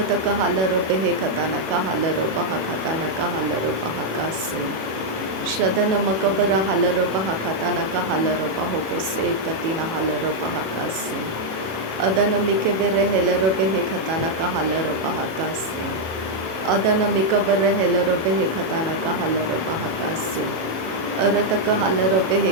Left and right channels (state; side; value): late; left; 37 ms